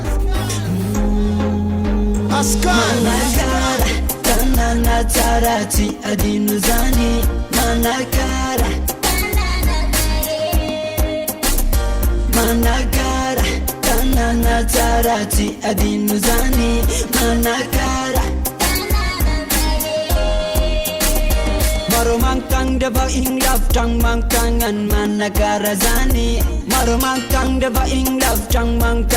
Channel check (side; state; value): both; identical; correlation 1.00